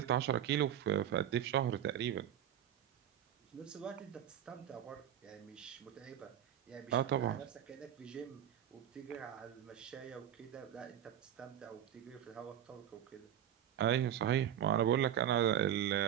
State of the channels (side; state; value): left; quieter; 10.4 dB